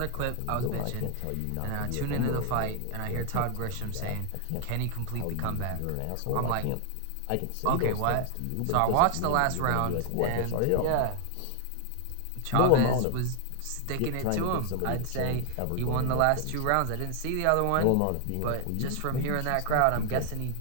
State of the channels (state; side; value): different; both; correlation 0.00